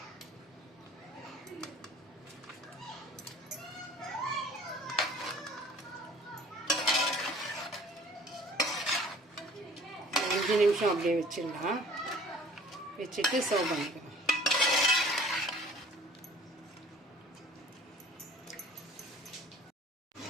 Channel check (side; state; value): both; normal; correlation 0.50